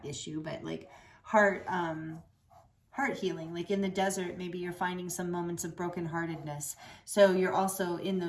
issue, but like heart healing. Like in the desert, maybe you're finding some moments of brokenheartedness. So you're also in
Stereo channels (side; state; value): both; identical; correlation 1.00